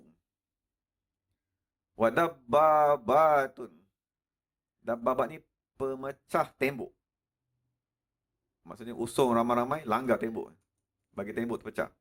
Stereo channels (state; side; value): identical; both; correlation 1.00